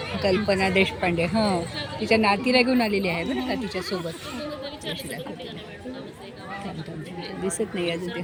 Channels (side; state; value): both; identical; correlation 1.00